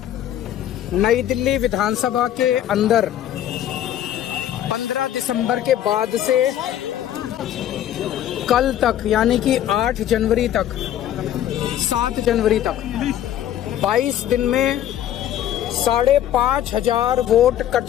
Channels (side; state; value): right; quieter; 11.4 dB